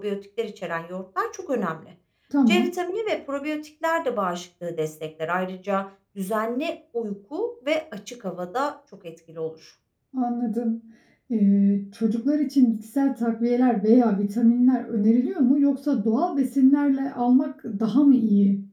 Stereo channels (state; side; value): identical; both; correlation 1.00